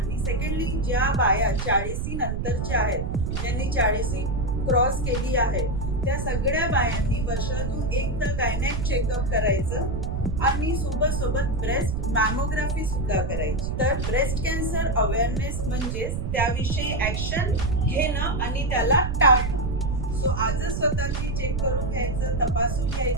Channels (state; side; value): noise; right; rumble, 2 dB below the sound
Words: सेकंडली, ज्या बाया 40 नंतरच्या आहेत, ज्यांनी 40 क्रॉस केली आहे, त्या सगळ्या बायांनी वर्षातून एकदा गायनेक चेकअप करायचं आणि सोबत ब्रेस्ट मॅमोग्राफी सुद्धा करायची. तर ब्रेस्ट कॅन्सर अवेअरनेस म्हणजे त्याविषयी ऍक्शन घेणं आणि त्याला टाळणं. सो आजच स्वतःची चेक करून घ्यायचं, तपासून